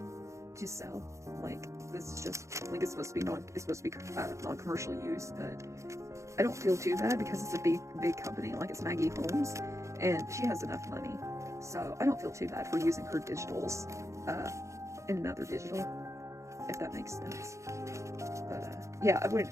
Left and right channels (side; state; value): left; late; 0.14 ms